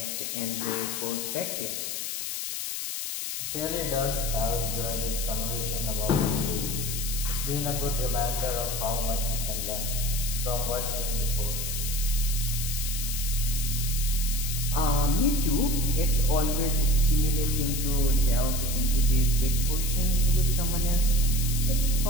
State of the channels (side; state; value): left; noise; hiss, 4 dB below the sound